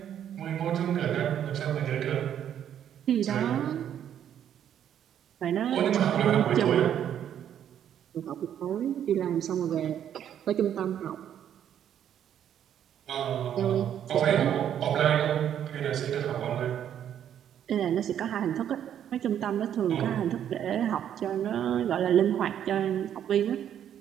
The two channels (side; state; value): left; quieter; 9.8 dB